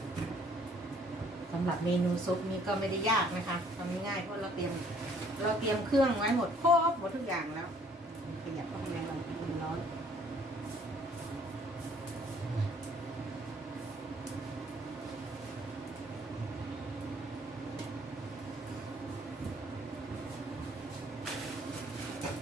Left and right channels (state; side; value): normal; both; correlation 0.60